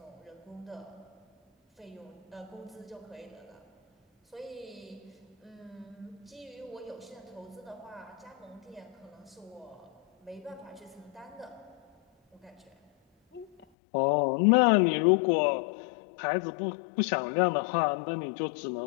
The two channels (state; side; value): drops out; right; at 13.7 s